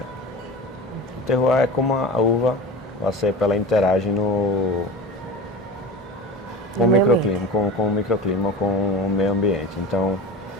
O terroir é como a uva, a cepa, ela interage com o microclima, com o microclima, com o meio ambiente. Então,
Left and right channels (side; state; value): both; normal; correlation 0.30